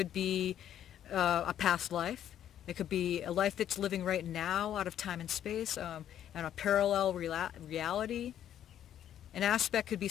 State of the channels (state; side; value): quieter; right; 10.6 dB